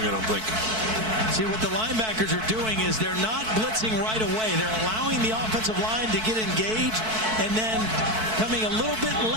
I don't think. See, what the linebackers are doing is they're not blitzing right away. They're allowing the offensive line to get engaged and then coming a little bit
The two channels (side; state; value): left; late; 4.6 ms